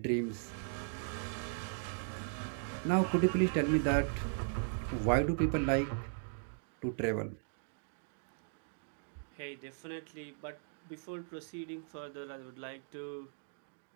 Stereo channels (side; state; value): left; silent; digital silence